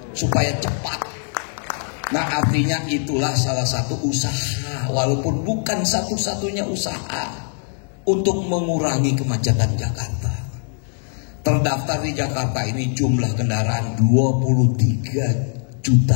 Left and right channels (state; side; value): silent; right; digital silence